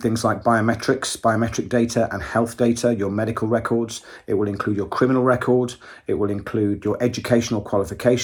things like biometric data and health data, your medical records. It will include your criminal record. It will include your educational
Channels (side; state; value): both; identical; correlation 1.00